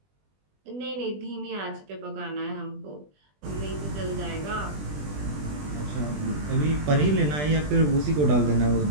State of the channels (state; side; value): late; left; 20 ms